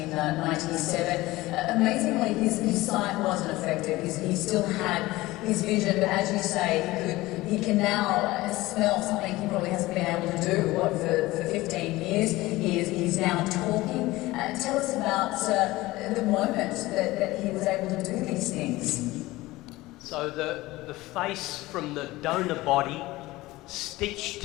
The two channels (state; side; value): quieter; right; 18.9 dB